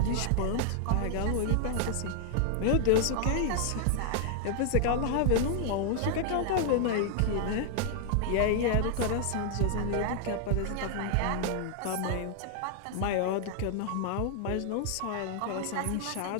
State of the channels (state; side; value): different; both; correlation 0.00